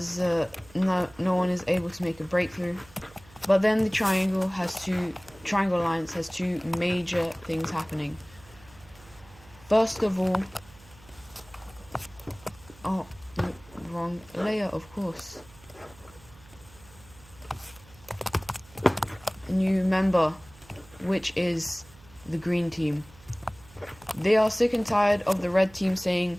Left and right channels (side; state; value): right; noise; hum, 24 dB below the sound